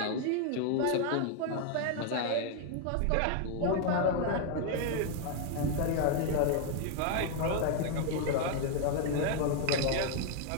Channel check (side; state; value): both; different; correlation 0.00